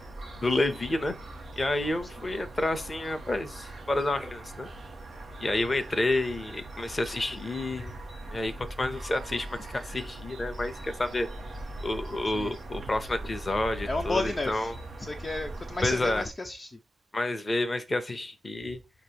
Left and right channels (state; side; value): normal; both; correlation 0.93